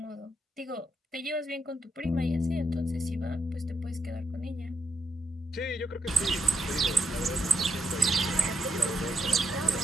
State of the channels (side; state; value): both; normal; correlation 0.79